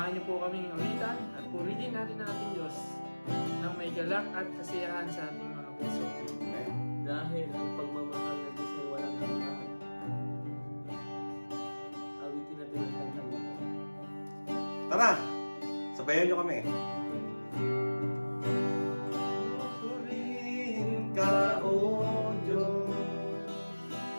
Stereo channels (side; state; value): both; inverted; correlation -1.00